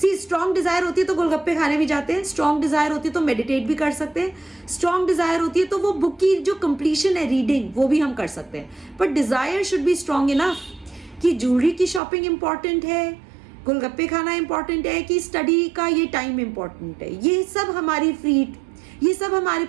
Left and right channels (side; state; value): left; drops out; at 12.0 s